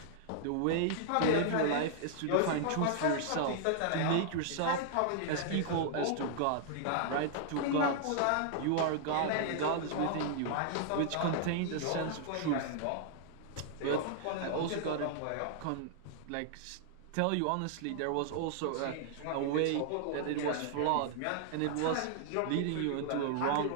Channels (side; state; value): both; different; correlation -0.01